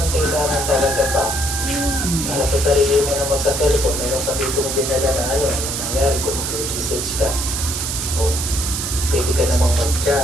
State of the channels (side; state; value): right; noise; hiss, 3 dB below the sound